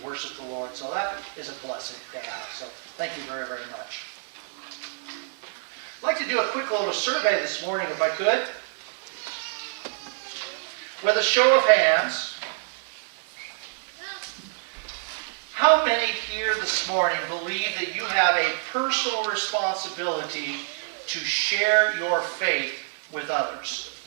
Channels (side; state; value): left; silent; digital silence